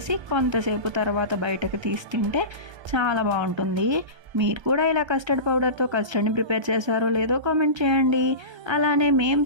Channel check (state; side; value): late; left; 1.3 ms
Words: కొంతసేపు తర్వాత బయటకు తీసి తింటే చాలా బాగుంటుంది. మీరు కూడా ఇలా కస్టర్డ్ పౌడర్తో కస్టర్డ్ని ప్రిపేర్ చేశారో లేదో కామెంట్ చేయండి. అలానే మేము